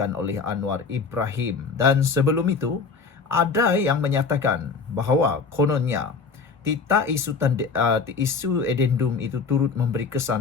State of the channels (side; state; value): right; quieter; 4.9 dB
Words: oleh Anwar Ibrahim. Dan sebelum itu, ada yang menyatakan bahawa kononnya isu edendum itu turut memberi